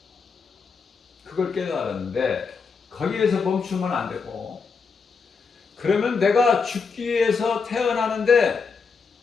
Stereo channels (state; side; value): quieter; right; 5.2 dB